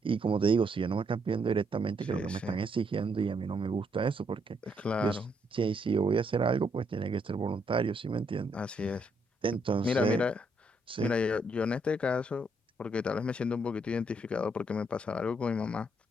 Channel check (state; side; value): normal; both; correlation 0.74